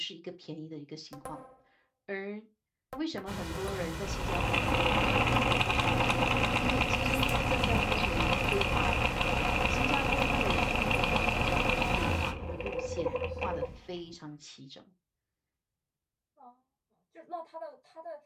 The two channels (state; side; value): identical; both; correlation 1.00